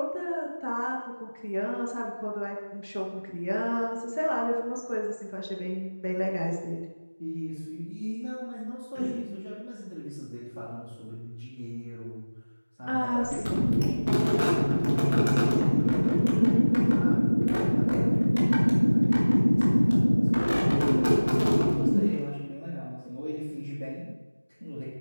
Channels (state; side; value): inverted; both; correlation -1.00